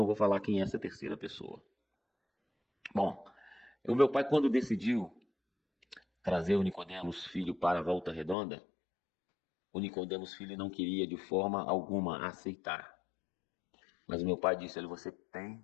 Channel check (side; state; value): right; drops out; at 8.3 s